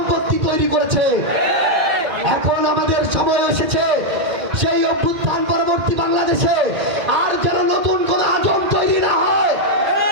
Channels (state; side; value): late; left; 2.1 ms